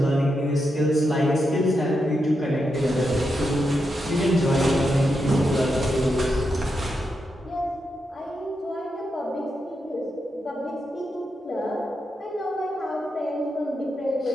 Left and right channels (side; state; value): both; normal; correlation 0.85